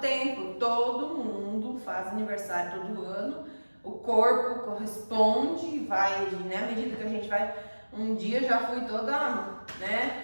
tempo, todo mundo faz aniversário todo ano, o corpo corresponde e vai, né, à medida que a gente vai, um dia já fui toda, né,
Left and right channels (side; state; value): both; inverted; correlation -1.00